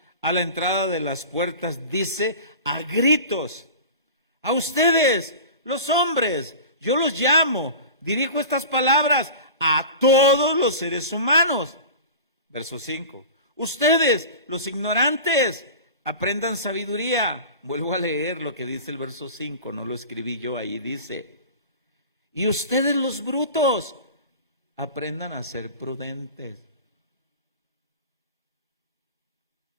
a la entrada de las puertas, dice a gritos, a ustedes, los hombres, yo los llamo, dirijo estas palabras a todos los seres humanos. Verso 5. Ustedes, los ignorantes, aprendan sabiduría. Vuelvo a leer lo que dice el verso 5, no lo escribí yo, ahí dice. Y ustedes, los brutos, aprendan a ser prudentes.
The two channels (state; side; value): inverted; both; correlation -0.35